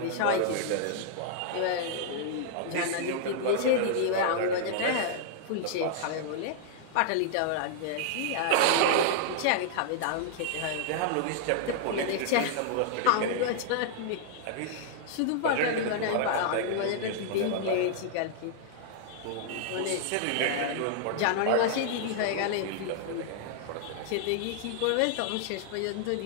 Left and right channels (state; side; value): different; both; correlation -0.01